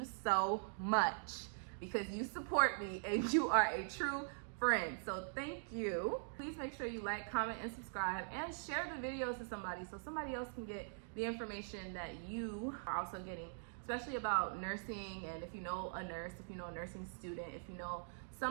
so much, because you support me and you are a true friend. So thank you. Please make sure you like, comment, and subscribe, and share the videos to somebody so somebody else can get the information that you are also getting, especially about nursing. And if you know a nurse, if you know a nursing student, if you know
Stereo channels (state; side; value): silent; left; digital silence